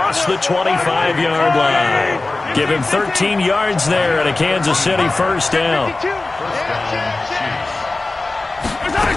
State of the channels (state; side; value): quieter; right; 3.2 dB